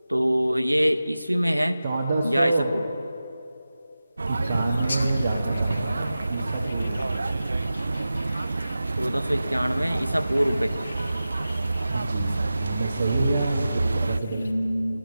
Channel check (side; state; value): both; inverted; correlation -0.94